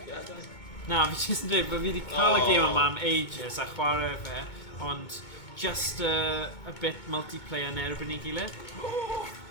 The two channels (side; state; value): right; late; 2.2 ms